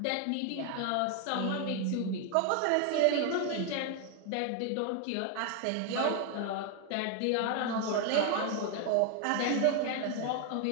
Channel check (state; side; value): different; both; correlation 0.01